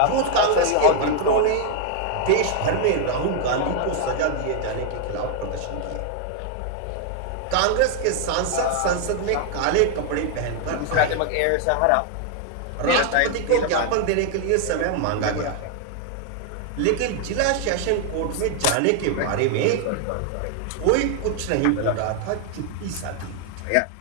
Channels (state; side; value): different; both; correlation 0.00